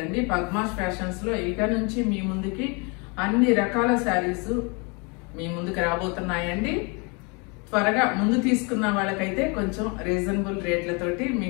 పద్మాస్ ఫ్యాషన్స్ లో ఇక నుంచి మీ ముందుకి అన్ని రకాల శారీస్ మీ ముందుకు రాబోతున్నాయండి. త్వరగా ముందు తీసుకున్న వాళ్ళకైతే కొంచెం రీజనబుల్ రేట్లతోటి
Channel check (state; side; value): quieter; right; 31.4 dB